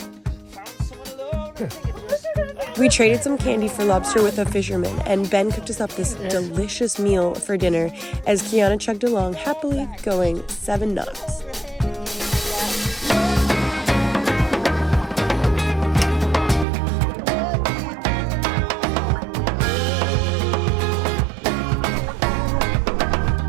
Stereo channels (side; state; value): left; drops out; at 16.7 s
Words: We traded some candy for lobster with a fisherman, and Ben cooked us up this delicious meal for dinner as Kiana chugged along happily, going 7 knots.